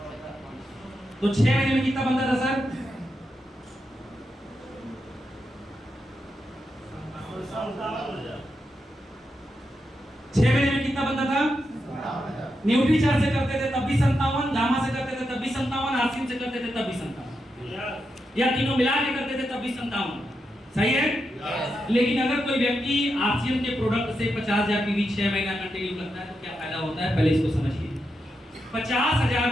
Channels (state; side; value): normal; both; correlation 0.85